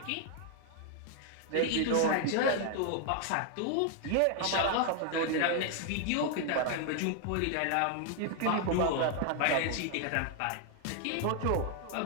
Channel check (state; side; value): different; both; correlation 0.00